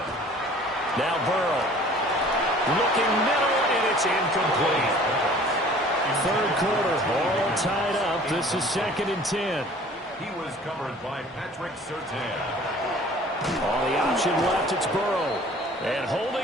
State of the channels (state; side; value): normal; both; correlation 0.49